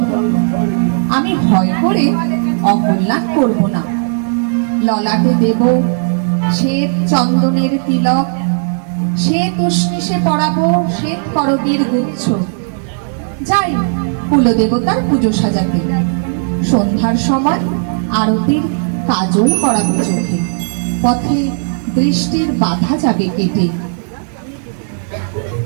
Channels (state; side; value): silent; left; digital silence